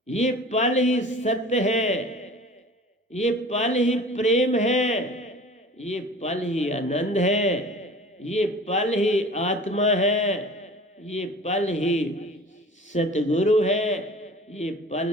ये पल ही सत्य है। ये पल ही प्रेम है। ये पल ही आनंद है। ये पल ही आत्मा है। ये पल ही सतगुरु है। ये पल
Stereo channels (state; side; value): normal; both; correlation 0.42